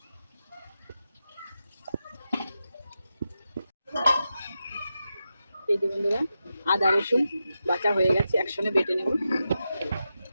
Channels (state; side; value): inverted; both; correlation -0.89